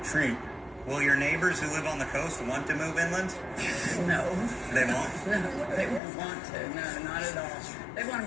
Will your neighbors who live on the coast want to move inland? No. They won't? No, they won't want to. No, not at all. They want to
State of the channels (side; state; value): right; drops out; at 6.0 s